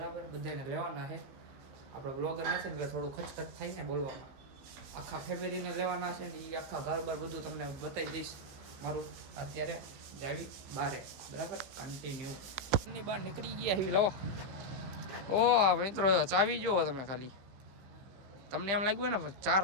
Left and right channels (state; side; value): late; left; 15 ms